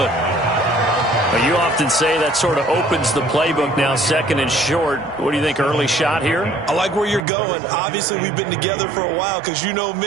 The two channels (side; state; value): left; drops out; at 7.2 s